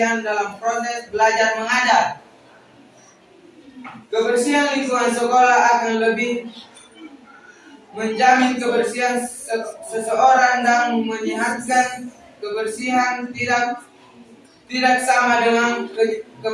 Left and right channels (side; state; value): both; identical; correlation 1.00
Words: dalam proses belajar mengajar. Kebersihan lingkungan sekolah akan lebih menjamin kebersihan seseorang dan menyehatkan. Kebersihan tidak sama dengan